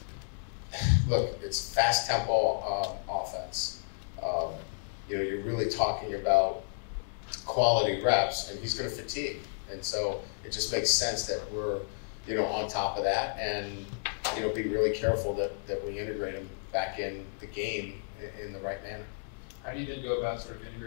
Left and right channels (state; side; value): silent; right; digital silence